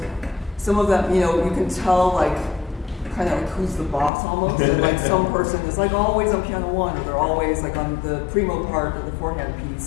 some of them, you know, you can tell like kind of like who's the boss almost, and like some person is like always on piano one, or they're always like on the primo part of the forehand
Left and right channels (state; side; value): drops out; right; at 4.1 s